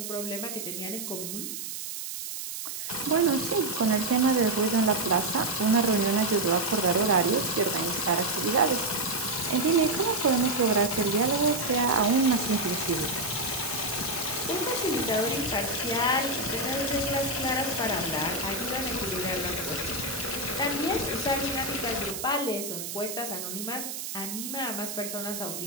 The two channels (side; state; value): right; noise; hiss, 7 dB below the sound